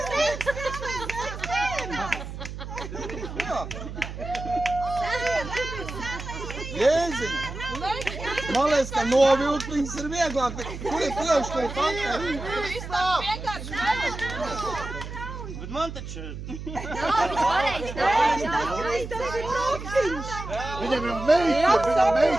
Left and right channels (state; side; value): noise; right; hum, 9 dB below the sound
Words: Jēziņ! Man liekas, ka novilkt viņas ir vieglāk, bet kur ir pieauškai faktai? Bet man taču... Viņam ir